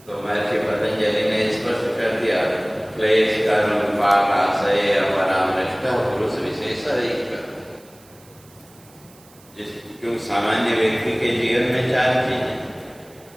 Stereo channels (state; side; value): noise; right; hiss, 26 dB below the sound